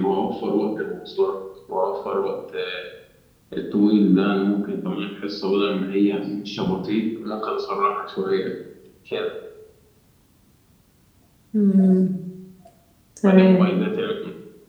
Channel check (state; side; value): identical; both; correlation 1.00